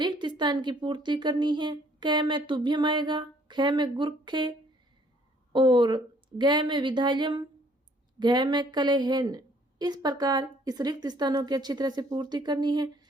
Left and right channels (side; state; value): both; normal; correlation 0.61